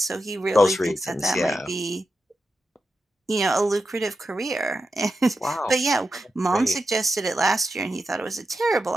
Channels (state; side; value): normal; both; correlation 0.89